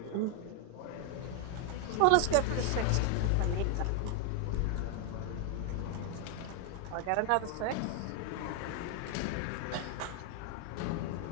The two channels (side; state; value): both; different; correlation 0.00